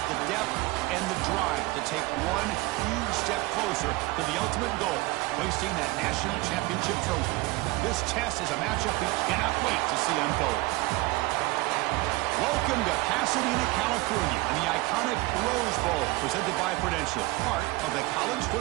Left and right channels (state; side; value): quieter; left; 21.8 dB